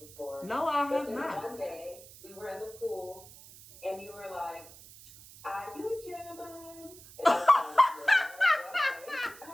No, I have not. One day we were in the pool and you were like, "Are you German?" And I was like,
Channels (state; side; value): noise; right; hiss, 19 dB below the sound